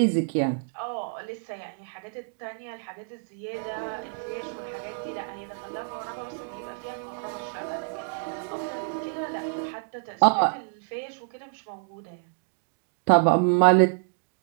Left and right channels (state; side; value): silent; left; digital silence